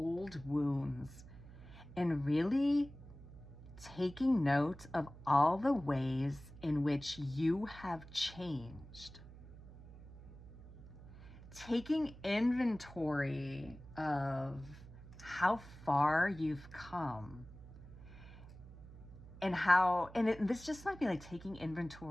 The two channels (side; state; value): right; noise; hum, 17 dB below the sound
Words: wounds and really taking note of all the ways in which you have changed. Taking inventory of how far you've come, and this just might be taking